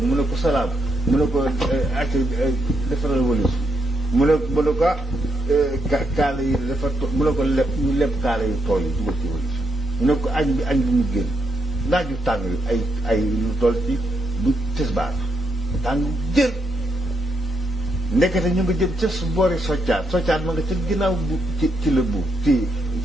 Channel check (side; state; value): both; normal; correlation 0.78